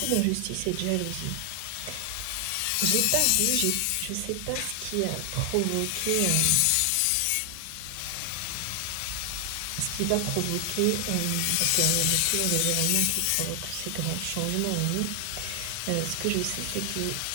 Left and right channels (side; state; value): both; different; correlation 0.00